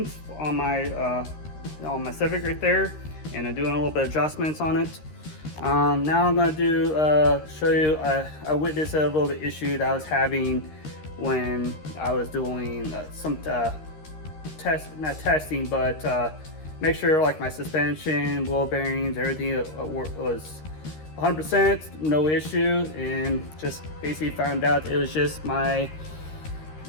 on my Civic right there, and I'm doing a little bit of adjustments on it. Now I'm going to show you I witnessed a little bit issue that I was having when I was doing some not testing, but make sure like my suspension, wheel bearings, everything was 100%, no issue, and just basically found out it was just my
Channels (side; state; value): right; late; 13 ms